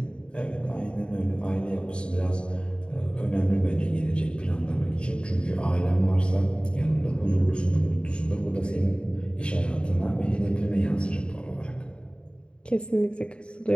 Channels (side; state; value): right; late; 0.054 ms